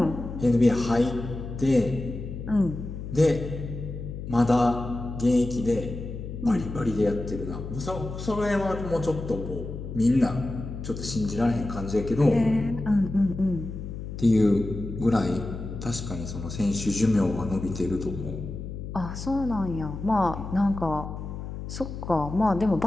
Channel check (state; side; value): noise; left; hum, 8 dB below the sound